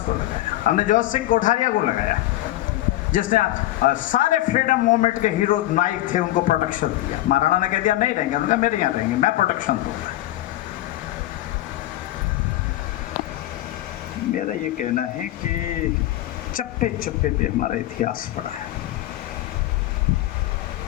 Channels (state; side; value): quieter; right; 15.5 dB